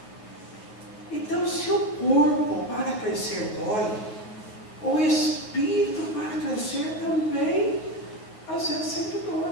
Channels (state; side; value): late; right; 9.2 ms